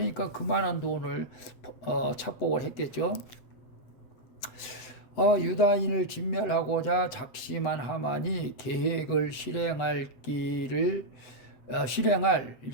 그만한 돈을 착복을 했겠죠. 유다인을 진멸하고자 작심한 하만이 계획을 실행할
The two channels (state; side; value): late; right; 8.0 ms